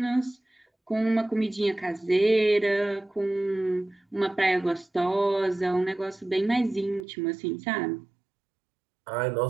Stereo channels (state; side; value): drops out; left; at 7.1 s